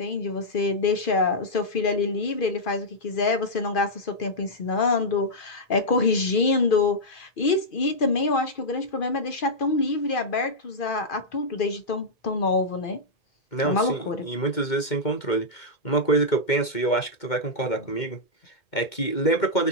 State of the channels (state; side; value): late; right; 2.2 ms